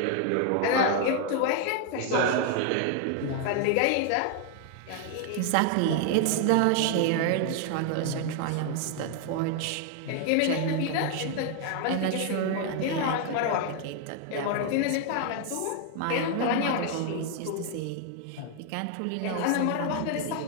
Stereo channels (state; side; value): different; both; correlation 0.00